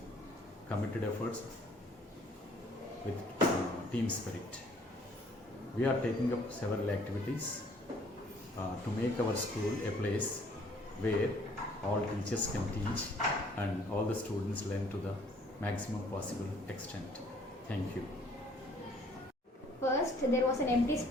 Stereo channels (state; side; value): normal; both; correlation 0.59